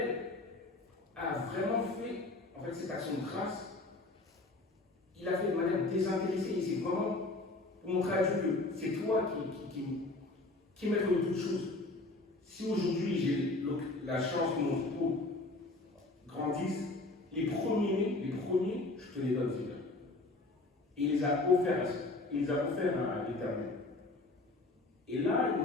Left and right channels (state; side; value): quieter; right; 3.0 dB